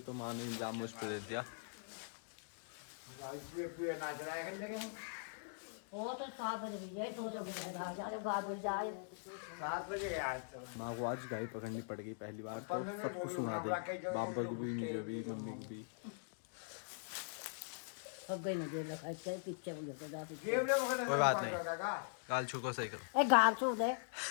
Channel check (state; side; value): silent; right; digital silence